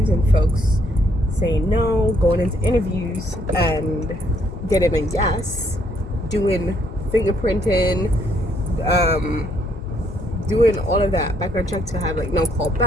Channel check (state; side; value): normal; both; correlation 0.70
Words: and folks saying no, going into interviews and getting a yes, doing fingerprinting, doing all of that background check to have like no call